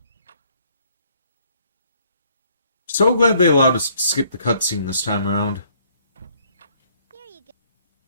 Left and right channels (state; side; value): inverted; both; correlation -0.64